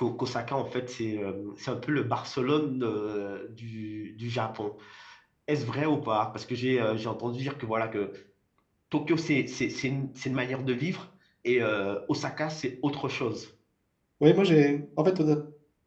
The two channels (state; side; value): identical; both; correlation 1.00